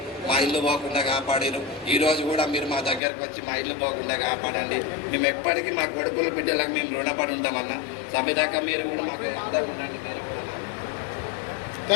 మా ఇల్లు పోకుండా కాపాడారు. ఈ రోజు కూడా మీరు మా దగ్గరకు వచ్చి మా ఇల్లు పోకుండా కాపాడండి. మేము ఎప్పటికీ మా కొడుకుల బిడ్డలకు మేము రుణపడి ఉంటామన్నా. సభ్యదాకా మీరు కూడా మాకు అంతా ఉండండి.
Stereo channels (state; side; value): drops out; right; at 3.0 s